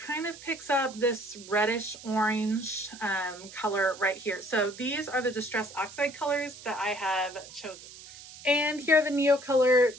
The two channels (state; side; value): noise; right; hiss, 17 dB below the sound